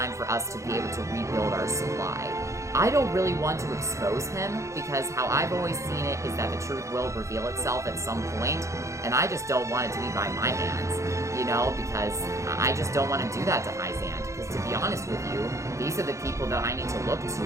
for us to be able to rebuild our supply. I don't really want to expose him, because how I've always seen it is that the truth will reveal itself at some point, and I just don't want it to be by my hands, you know, because I just don't want to do that to Hyzant, because to be honest with you, these are the people that I need to look to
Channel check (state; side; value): late; left; 0.15 ms